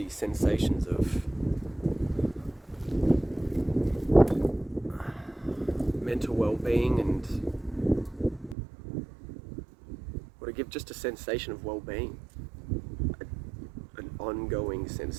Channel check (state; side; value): drops out; left; at 8.6 s